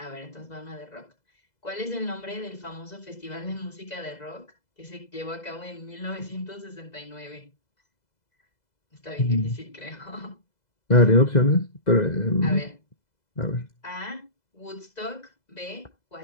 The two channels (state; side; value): late; right; 2.0 ms